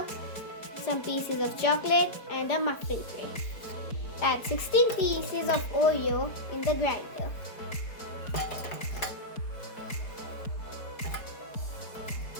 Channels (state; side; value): late; right; 4.6 ms